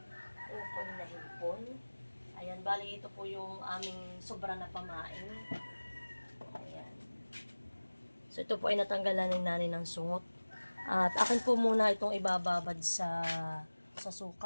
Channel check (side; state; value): both; inverted; correlation -1.00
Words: kukoy na hipon. Ayan, bali ito po yung aming sobra na pamain. Ayan. So ito po ay natanggalan ng nanay ng sungot. At akin po muna itong ibababad sa